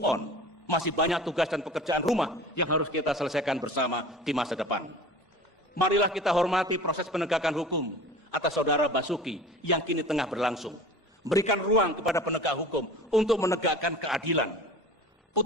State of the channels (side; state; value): both; normal; correlation 0.39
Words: on. Masih banyak tugas dan pekerjaan rumah yang harus kita selesaikan bersama di masa depan. Marilah kita hormati proses penegakan hukum atas saudara Basuki yang kini tengah berlangsung. Berikan ruang kepada penegak hukum untuk menegakkan keadilan.